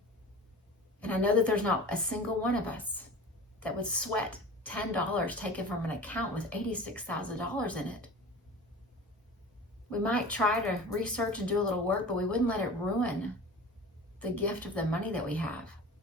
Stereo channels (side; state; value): both; normal; correlation 0.36